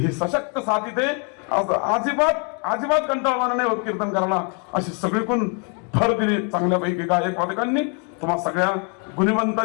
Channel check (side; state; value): right; quieter; 37.8 dB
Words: सशक्त साथ इथे अजिबात कंटाळवाणा नाही होत कीर्तन करायला. अशी सगळीकडून भर दिली चांगल्यापैकी गायक वादकांनी. तुम्हा सगळ्या